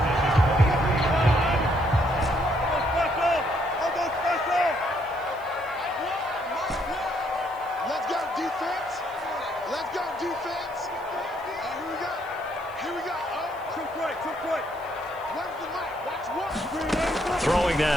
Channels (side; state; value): left; noise; hiss, 27 dB below the sound